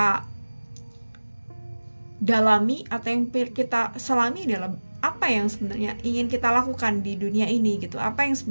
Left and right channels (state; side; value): inverted; both; correlation -1.00